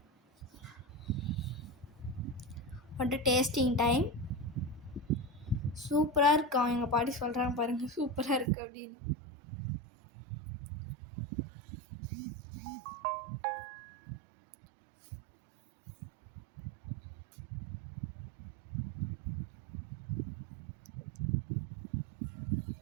வந்துட்டு டேஸ்டிங் டைம். சூப்பராக இருக்கும். எங்கள் பாட்டி சொல்கிறாங்க பாருங்கள், சூப்பராக இருக்குது அப்படின்னு.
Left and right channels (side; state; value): left; drops out; at 8.5 s